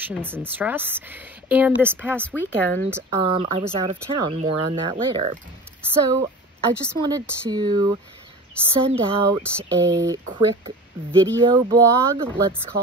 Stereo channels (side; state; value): both; normal; correlation 0.36